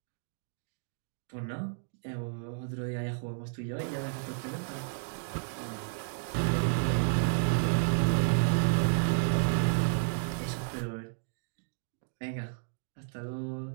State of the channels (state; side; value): silent; left; digital silence